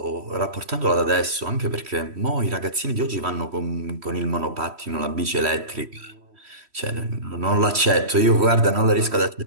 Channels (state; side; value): late; left; 3.1 ms